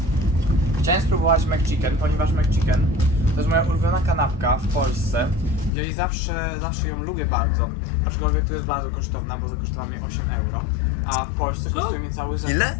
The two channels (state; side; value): drops out; right; at 5.7 s